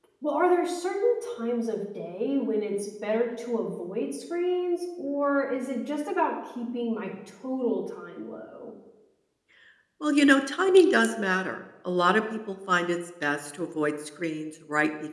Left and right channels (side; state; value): both; identical; correlation 1.00